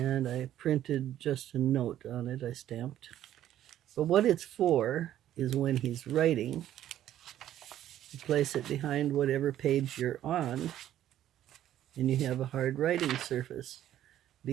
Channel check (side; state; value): left; quieter; 12.1 dB